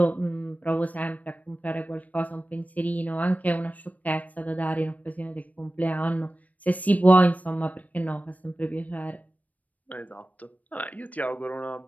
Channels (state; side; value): late; right; 0.073 ms